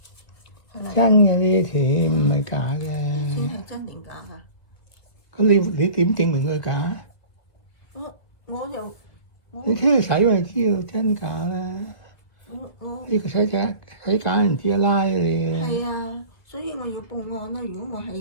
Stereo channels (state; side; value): late; right; 1.7 ms